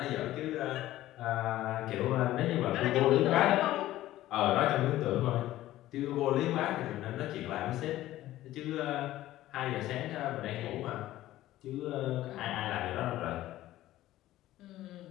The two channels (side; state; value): right; quieter; 14.9 dB